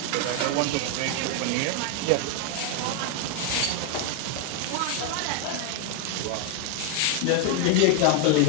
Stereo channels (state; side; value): different; both; correlation 0.01